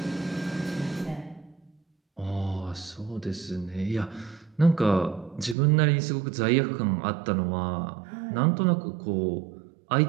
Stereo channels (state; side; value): drops out; left; at 5.6 s